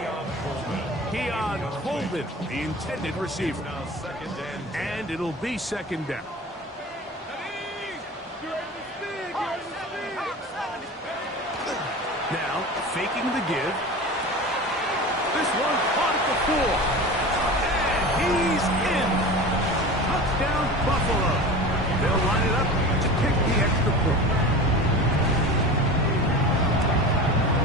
Keon Coleman, the intended receiver. And it'll be second down. Now, faking the give. This one caught at the 4. And he's in. Touchdown, Buffalo. They'll line it up to kick the extra point.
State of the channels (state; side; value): normal; both; correlation 0.33